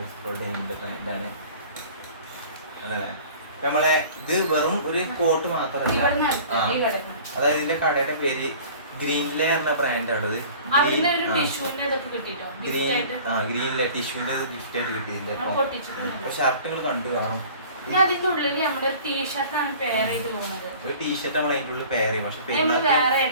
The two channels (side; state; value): both; inverted; correlation -0.45